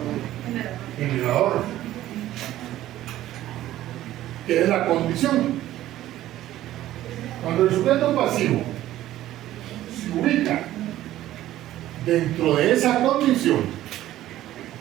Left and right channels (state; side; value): quieter; left; 14.0 dB